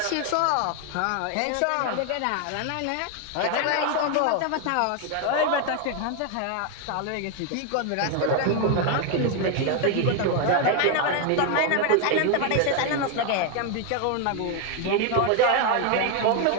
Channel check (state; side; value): different; both; correlation 0.01